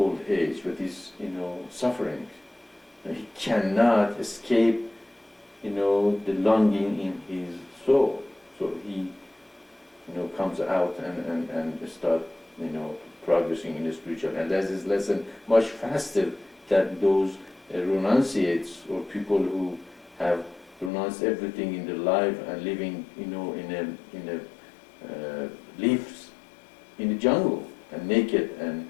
age? What is, suffering? And he cannot escape, the longing in his soul. So he, comes out and start, progressing in the spiritual. And that's his lesson much faster than those renunciates or people who have renounced everything in their life and living, lives in the jungle and naked and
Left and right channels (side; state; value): right; drops out; at 20.9 s